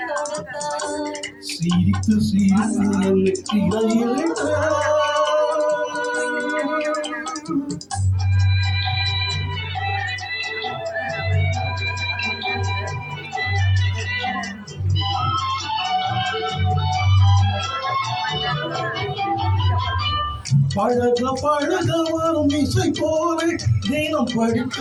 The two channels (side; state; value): both; identical; correlation 1.00